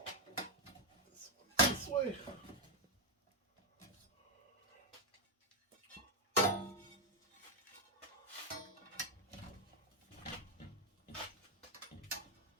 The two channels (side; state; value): both; normal; correlation 0.02